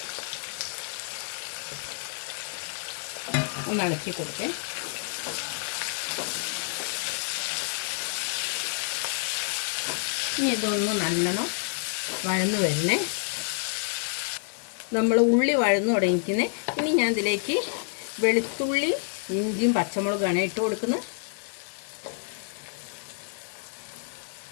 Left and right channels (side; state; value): right; silent; 56 dB below the other